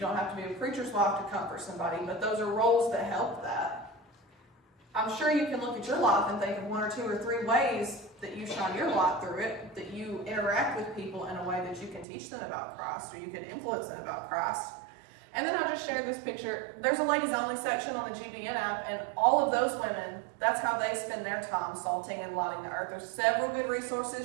have to be a preacher's wife to comfort somebody, but those are roles that help that. I'm sure you can look at your life and think of 1 or 2 or 3 ways that you shine your light through it, that you interact with people in a way that you can teach them about Christ or you can influence them about Christ. And then I just shared this picture. There's a ladies only section on the GBN app, and all of those women, that's how they spend their time salting and lighting the earth. There's several good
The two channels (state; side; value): drops out; left; at 12.1 s